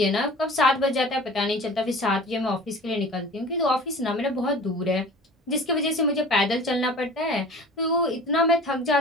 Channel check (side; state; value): both; normal; correlation 0.41